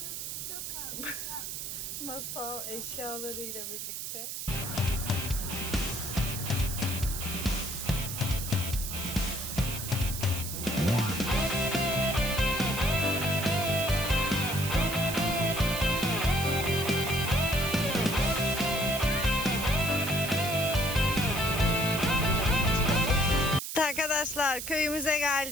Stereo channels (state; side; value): noise; right; hiss, 6 dB below the sound